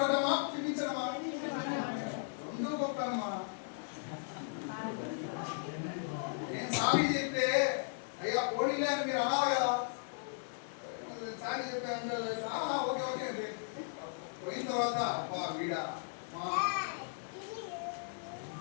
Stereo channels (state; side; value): silent; right; digital silence